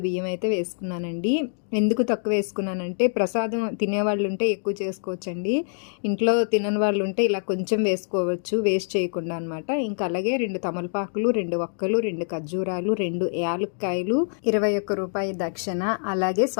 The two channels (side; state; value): right; silent; 62 dB below the other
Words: బియ్యం అయితే వేసుకున్నానండి. ఎందుకు తక్కువ వేసుకున్నానంటే ప్రసాదం తినేవాళ్ళు ఉంటే ఎక్కువ చేసుకోవచ్చండి. ఇంట్లో తినని వాళ్ళు ఉంటే ఇలా కొంచెం వేసుకోవచ్చు, వేస్ట్ చేయకుండా అనమాట. ఇంకా అలాగే 2 తమలపాకులు, 2 వక్కలు, 2 ఖర్జూరాలు, 2 యాలక్కాయలు, 21 రూపాయి దక్షిణ, అలాగే